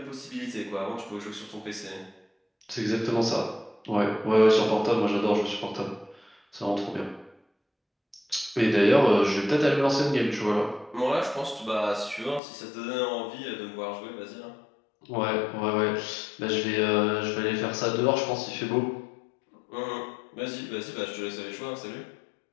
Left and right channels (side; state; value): right; drops out; at 12.4 s